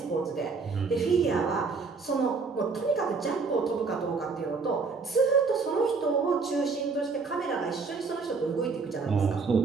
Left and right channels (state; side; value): quieter; left; 4.6 dB